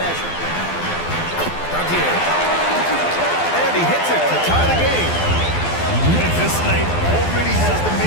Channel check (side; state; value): right; late; 12 ms